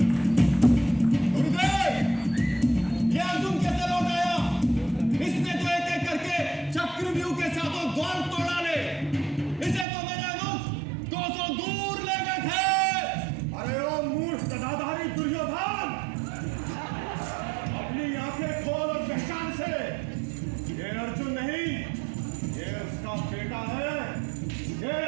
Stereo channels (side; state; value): left; drops out; at 9.9 s